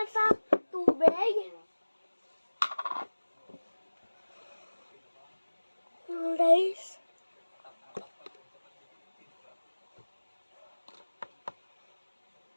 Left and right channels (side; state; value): both; inverted; correlation -1.00